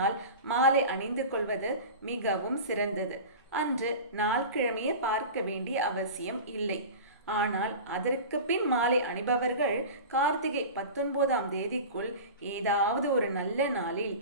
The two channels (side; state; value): both; inverted; correlation -0.33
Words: மாலை அணிந்து கொள்வது மிகவும் சிறந்தது. அன்று நாள் கிழமையை பார்க்க வேண்டிய அவசியம் இல்லை. ஆனால் அதற்கு பின் மாலை அணிபவர்கள் கார்த்திகை 19ஆம் தேதிக்குள் ஏதாவது ஒரு நல்ல நாளில்